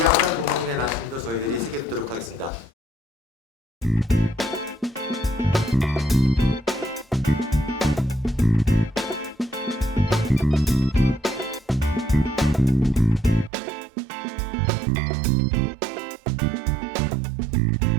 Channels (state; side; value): drops out; left; at 13.5 s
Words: 양산 부모님의 말씀도 저희들이 새겨듣도록 하겠습니다.